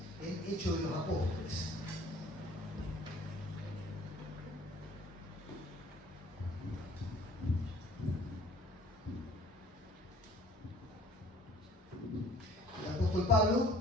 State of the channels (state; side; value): normal; both; correlation 0.53